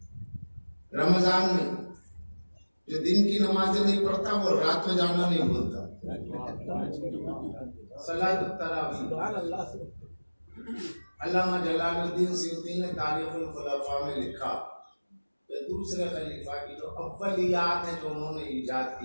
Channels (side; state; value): both; inverted; correlation -1.00